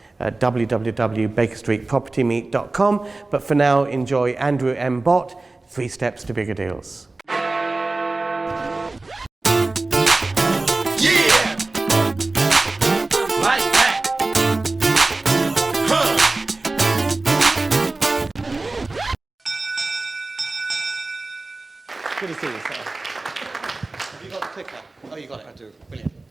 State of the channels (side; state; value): left; quieter; 3.2 dB